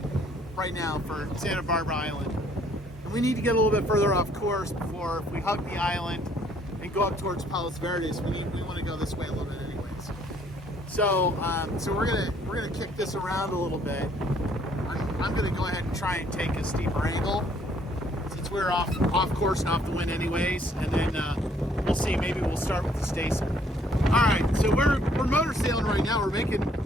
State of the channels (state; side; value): normal; both; correlation 0.63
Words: right now for Santa Barbara Island, and we need to get a little bit further off course before if we hug the island and go up towards Palos Verdes. We want to go this way a little bit anyways. So we're gonna kick this around a little bit. I'm gonna go ahead and try and take a steeper angle since we're off course and off the wind anyways, and then we'll see. Maybe we'll start with the staysail. All right, so we're motor sailing right now. We're making